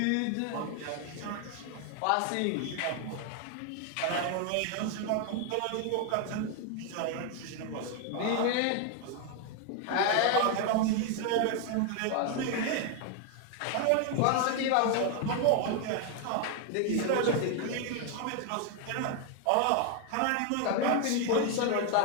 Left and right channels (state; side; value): different; both; correlation 0.01